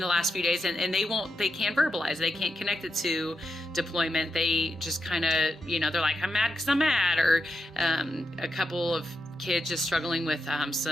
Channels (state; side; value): normal; both; correlation 0.86